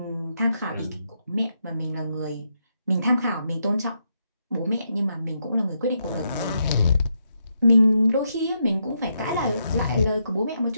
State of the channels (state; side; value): inverted; both; correlation -0.81